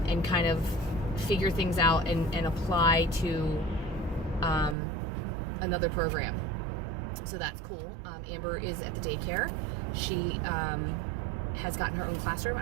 kind of figure things out and apply to another program. So that's cool. Amber is at the daycare. She has gotten her own classroom.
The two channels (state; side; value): drops out; left; at 4.8 s